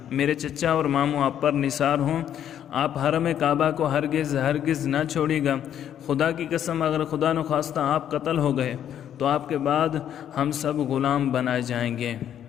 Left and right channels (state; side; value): quieter; right; 10.0 dB